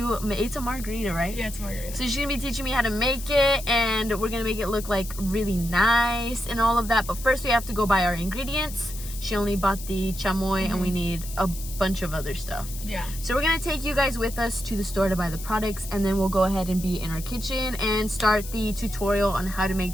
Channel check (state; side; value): noise; left; hiss, 12 dB below the sound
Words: make, it's a margarita, right? Yeah, it's margarita. So she's going to be teaching me how to make it. And we're going to make it look like really nice and all of that. But first we have to go buy our ingredients. She only bought the chamoy and we need a bunch of other stuff. Yeah. So we're gonna take you guys with us to the store to buy the products, and then we'll go ahead and be in our kitchen and start the tutorial on how to